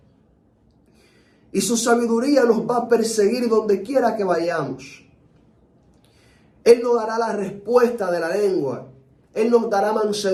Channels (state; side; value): identical; both; correlation 1.00